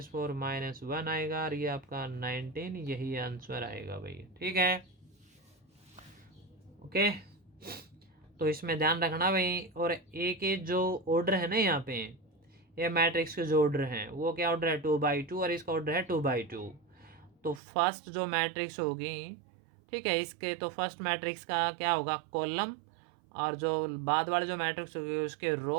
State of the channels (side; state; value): left; drops out; at 17.6 s